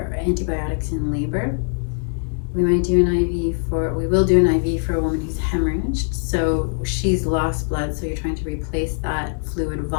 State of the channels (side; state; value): right; silent; 64 dB below the other